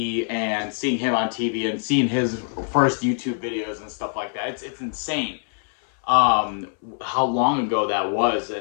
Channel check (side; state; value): right; silent; 63 dB below the other